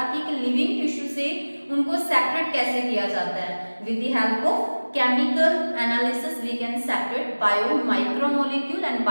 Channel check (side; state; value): both; inverted; correlation -1.00